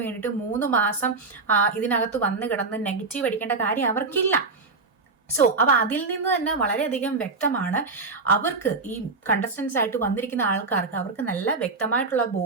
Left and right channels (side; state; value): left; quieter; 4.0 dB